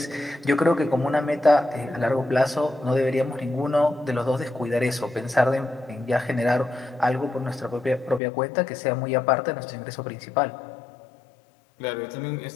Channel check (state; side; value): drops out; right; at 8.2 s